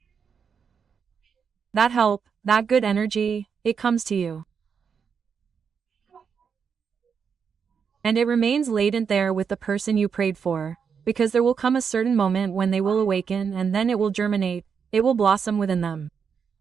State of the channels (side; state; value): left; quieter; 6.5 dB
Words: That help, that good energy, it comes to you. And it remains latent there with the person you prayed for, because there will come a certain moment when they will awaken and then it will germinate, it will blossom within them.